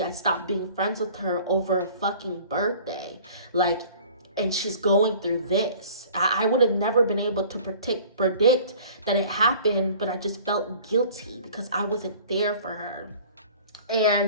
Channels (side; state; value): both; inverted; correlation -0.48